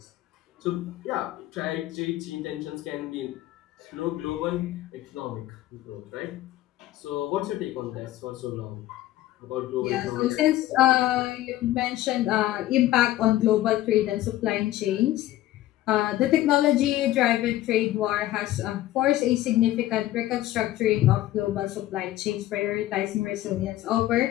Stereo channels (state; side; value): quieter; right; 14.9 dB